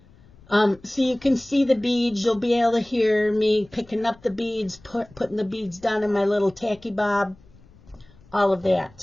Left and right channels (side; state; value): left; noise; rumble, 26 dB below the sound